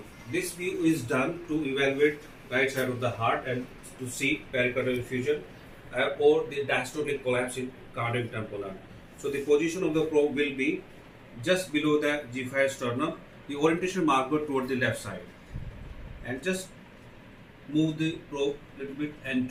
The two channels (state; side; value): identical; both; correlation 1.00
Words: This view is done to evaluate right side of the heart and to see pericardial effusion or the diastolic collapse in cardiac tamponade. So the position of the probe will be just below the G5 sternum, the orientation marker toward the left side, and just move the probe a little bit